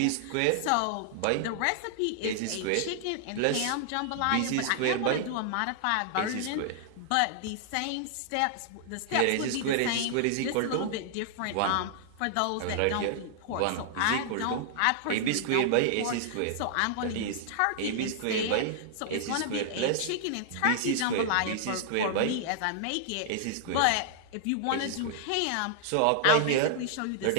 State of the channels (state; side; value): different; both; correlation -0.01